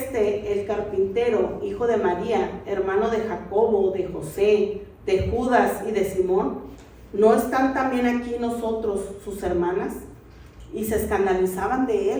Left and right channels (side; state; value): both; identical; correlation 1.00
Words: el carpintero, hijo de María, hermano de Jacobo, de José, de Judas y de Simón? ¿No están también aquí nosotros, sus hermanas? Y se escandalizaban de